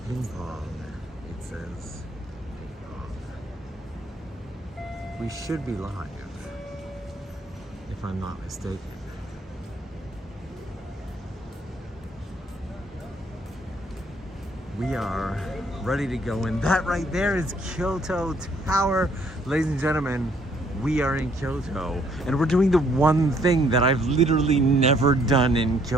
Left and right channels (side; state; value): both; normal; correlation 0.65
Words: Ping pong. It says ping pong. We should be live, if I'm not mistaken. We are ready to go in. That right there is Kyoto Tower. Ladies and gentlemen, we are in Kyoto. And we're doing the one thing that I've literally never done in